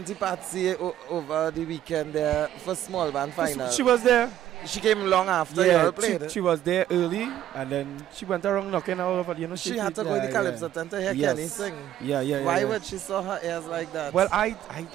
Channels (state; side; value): quieter; left; 12.0 dB